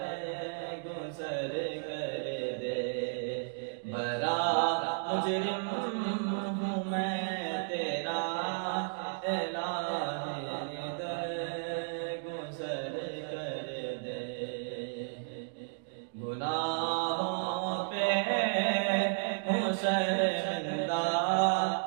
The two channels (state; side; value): silent; left; digital silence